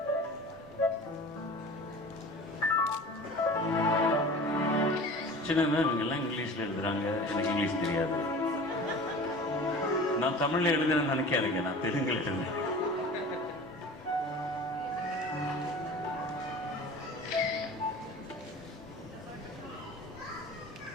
சின்னதுனா இவங்க எல்லாம் இங்கிலீஷில் எழுதுறாங்க, எனக்கு இங்கிலீஷ் தெரியாது. நான் தமிழில் எழுதுறேன்னு நினைக்காதீங்க, நான் தெலுங்கில் எழுதுறேன்.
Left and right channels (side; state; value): both; normal; correlation 0.39